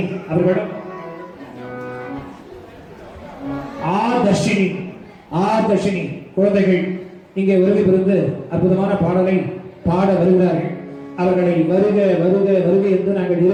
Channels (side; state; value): both; identical; correlation 1.00